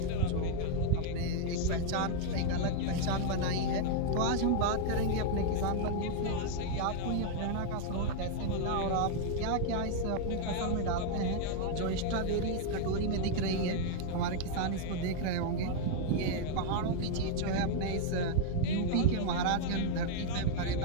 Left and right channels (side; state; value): both; different; correlation 0.00